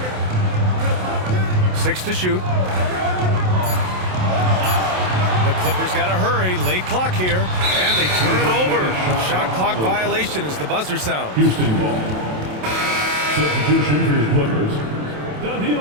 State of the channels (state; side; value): late; left; 27 ms